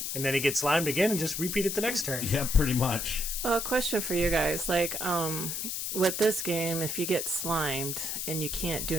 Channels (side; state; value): left; noise; hiss, 3 dB below the sound